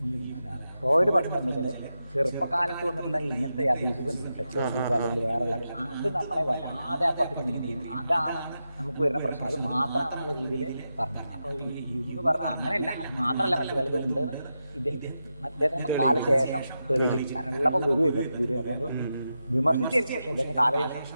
ഫ്രോയിഡ് പറഞ്ഞതെന്ന് വെച്ചാൽ ചെറുപ്പകാലത്ത് വന്നിട്ടുള്ള ഇങ്ങനത്തെ അബ്യൂസുകൾ, സെക്സ്വൽ അബ്യൂസ് അല്ലെങ്കിൽ വേറെയുള്ളത്, അത് നമ്മളെ വല്ലാതെ അപ്പുറത്തേക്ക് നീന്തിയും അതാണ് നമുക്ക് വരുന്ന പ്രശ്നം. അത് മാത്രമാണെന്നുള്ള രീതിയിൽ പറഞ്ഞത്. അപ്പോൾ ഈ യുങ് പറഞ്ഞ അങ്ങനെയല്ല, അത് മാത്രമല്ല മറ്റു പലതും ഉണ്ട് അദ്ദേഹത്തിന് കാലശേഷം തെളിയിച്ചു. കാരണം ഉള്ളപ്പോൾ ഗുരു അതുകൊണ്ട് വിമർശിച്ചിരുന്നു. പക്ഷേ ഇദ്ദേഹം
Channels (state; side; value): inverted; both; correlation -0.88